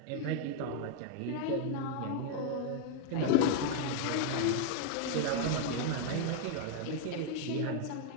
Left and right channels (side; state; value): both; different; correlation 0.00